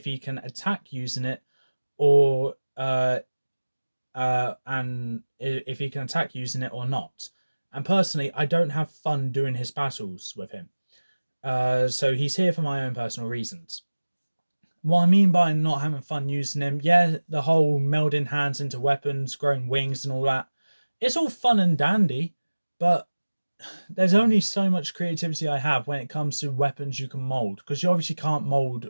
he can attack using it or and if he can attack using it or not. And personally, I don't have fun doing his battles with him. So he's here for my own personal reasons. What I mean by not having fun using him, yeah, the whole melding hands into weapons, growing wings and all that, it's all fun and dandy, but there's only so much creativity I have when it comes to weapons you can mold, because you obviously can't mold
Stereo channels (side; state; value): both; inverted; correlation -1.00